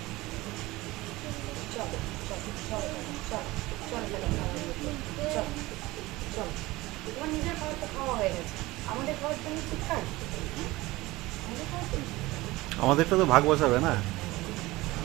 চলো চলো চলো চলো চলো চলো চলো চলো। তোমার নিজের খাবার তো খাওয়া হয়ে গেছে, আমাদের খাবার তুমি ঠিক খাবে? আমাদের খাবার তুমি আমাদেরটা তো ভাগ বসাবে না।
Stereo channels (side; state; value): left; quieter; 19.7 dB